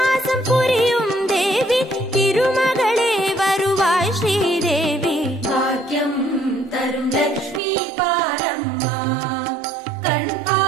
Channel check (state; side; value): drops out; left; at 7.6 s